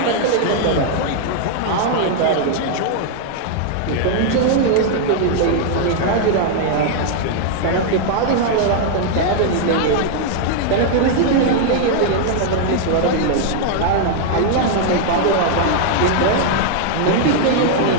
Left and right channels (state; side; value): different; both; correlation 0.00